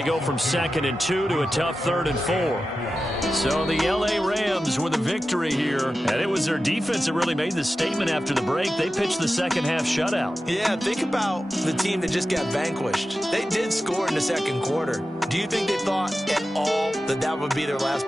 go from 2nd and 2 to a tough 3rd and 4. So the L.A. Rams with a victory here, and it was their defense that really made the statement after the break. They pitched the second half shutout. Yeah, think about the team that just got vanquished. They did score in the second quarter. Do you think they thought at all that that would be their last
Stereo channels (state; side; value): normal; both; correlation 0.93